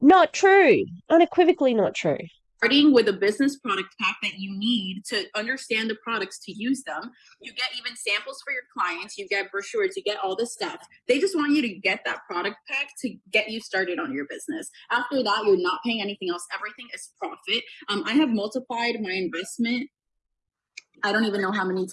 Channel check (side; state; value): both; identical; correlation 1.00